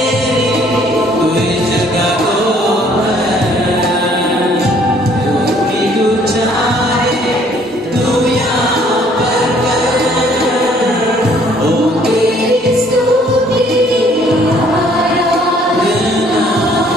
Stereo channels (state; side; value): normal; both; correlation 0.61